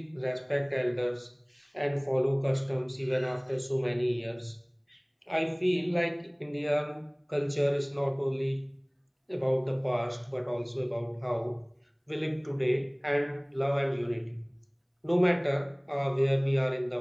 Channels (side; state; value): both; identical; correlation 1.00